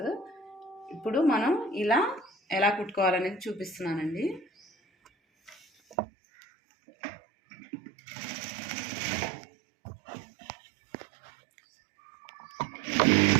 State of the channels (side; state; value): left; drops out; at 6.0 s